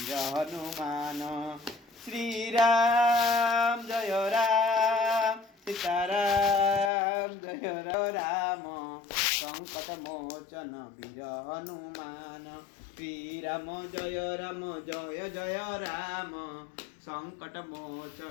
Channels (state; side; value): drops out; right; at 6.9 s